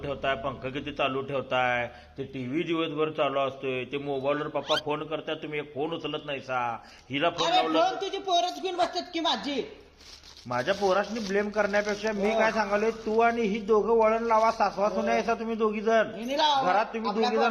ठेवताय, पंखा किती चालू ठेवताय, ते टीव्ही दिवसभर चालू असतोय, ते मोबाईलवर पप्पा फोन करताय, तुम्ही एक फोन उचलत नाही सा. हिला फोन अरे लावला फोन तुझी पोरच घेऊन बसतात की माझी. माझ्या पोरासनी ब्लेम करण्यापेक्षा मी काय सांगालोय, तू आणि ही दोघं वळण लावा, सासवा सुना याचा तुम्ही दोघी जण हिने लावा. घरात तुम्ही आपल्या दोघी जण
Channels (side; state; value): both; identical; correlation 1.00